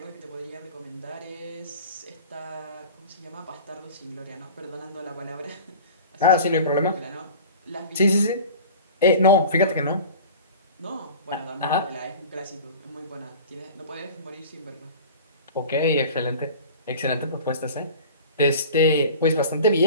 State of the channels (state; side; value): inverted; both; correlation -0.39